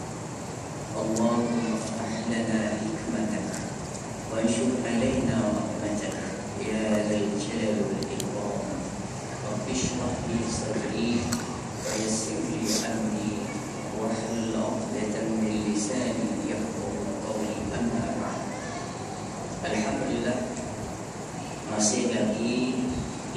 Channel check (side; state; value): both; identical; correlation 1.00